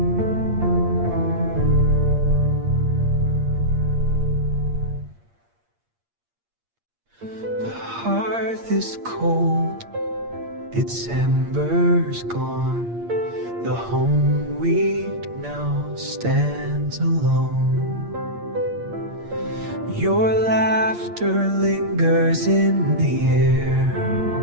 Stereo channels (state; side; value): late; left; 8.6 ms